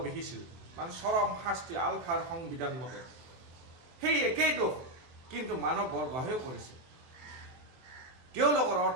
বিহিছিল মানে চৰম শাস্তি আলফাৰ সংবিধান মতে সেই একেই দোষ কিন্তু মানৱ বৰগোহাঁইও কৰিছে তেওঁলোকৰ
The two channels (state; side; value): late; left; 23 ms